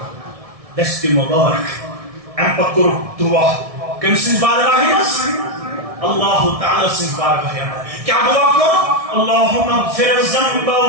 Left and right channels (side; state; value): left; late; 1.6 ms